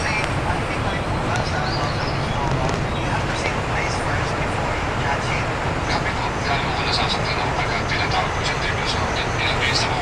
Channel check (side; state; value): both; identical; correlation 1.00